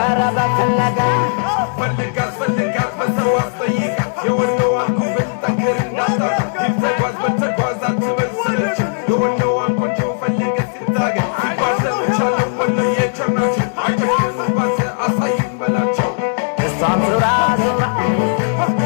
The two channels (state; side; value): silent; right; 67 dB below the other